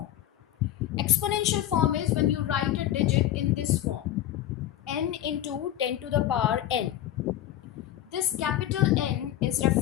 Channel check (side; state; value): right; quieter; 12.6 dB